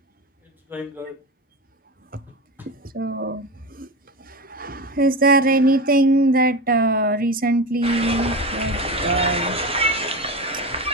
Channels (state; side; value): normal; both; correlation 0.22